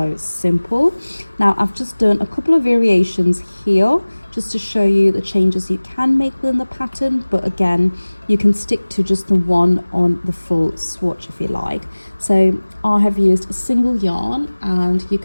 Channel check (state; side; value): inverted; both; correlation -1.00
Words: simple. Now I've just done a couple of variations here just to show you the changes you can make within the pattern, but again, you can stick to just the one on the full swatch if you like. So I have used a single yarn, and you